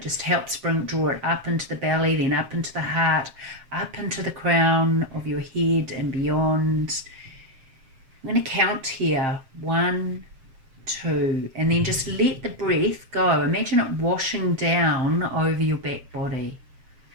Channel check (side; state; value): left; late; 7.5 ms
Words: just helps draw it up into the belly, then up into the heart, up into the crown of your head and beyond. I'm going to count here. 1, 2, and then just let the breath go. Imagine it washing down over your back body